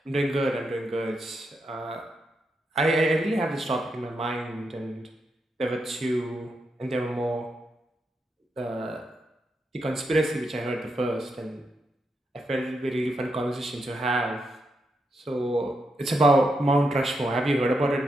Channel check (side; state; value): both; normal; correlation 0.83